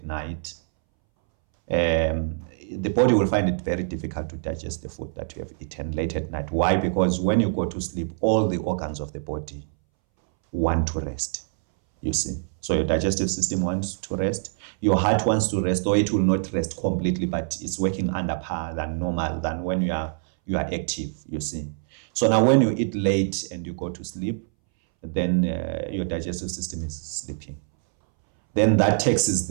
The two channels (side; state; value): left; silent; 62 dB below the other